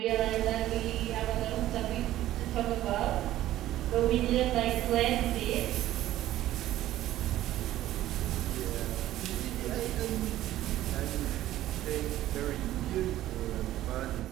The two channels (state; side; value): quieter; left; 14.1 dB